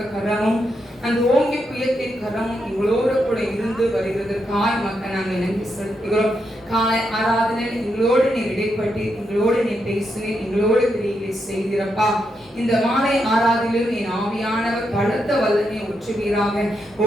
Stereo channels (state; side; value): normal; both; correlation 0.82